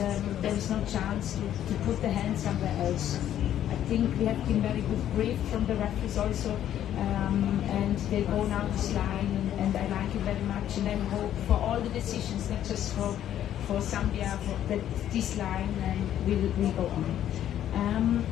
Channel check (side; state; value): right; quieter; 11.1 dB